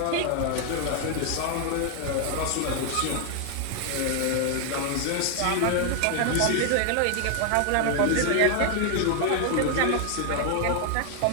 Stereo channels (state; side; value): different; both; correlation 0.00